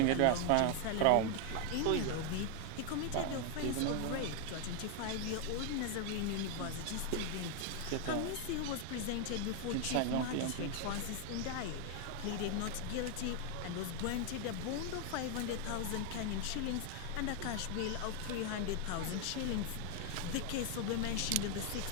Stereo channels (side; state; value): both; different; correlation 0.00